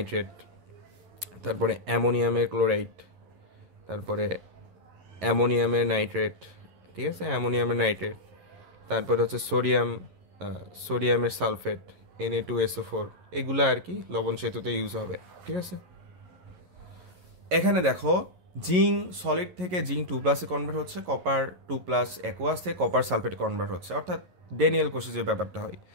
তারপরে অ্যামোনিয়ামের ক্লোরাইড, তারপরে অ্যামোনিয়ামের নাইট্রেট, ঠিক আছে, অ্যামোনিয়ামের নাইট্রেট, তারপরে হচ্ছে সোডিয়ামের সালফেট, Na2SO4, এগুলো আর কি লবণ সেতুতে ইউজ হবে, ঠিক আছে। এখানে দেখো, জিঙ্ক সলিড থেকে জিঙ্ক 2+ কনভার্ট হচ্ছে, কপার 2+ অ্যাকোয়াস থেকে কপার সালফেটে কনভার্ট হচ্ছে, অর্থাৎ ড্যানিয়েল কোষে যে ব্যাপারটা হয়।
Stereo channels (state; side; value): late; left; 11 ms